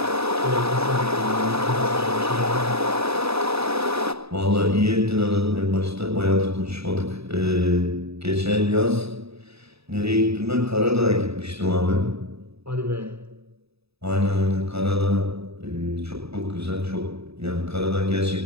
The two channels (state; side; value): late; left; 0.78 ms